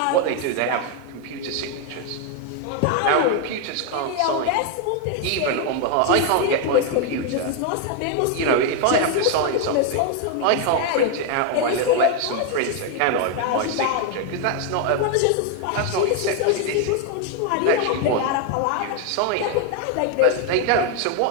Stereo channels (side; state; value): both; different; correlation 0.01